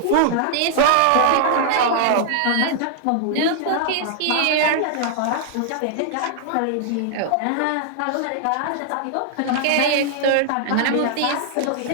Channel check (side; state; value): both; different; correlation 0.00